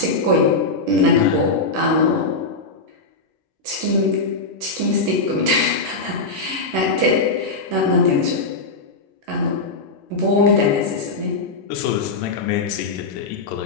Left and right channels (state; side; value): quieter; right; 3.5 dB